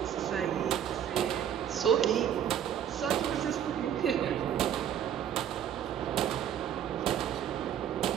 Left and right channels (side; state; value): left; quieter; 9.6 dB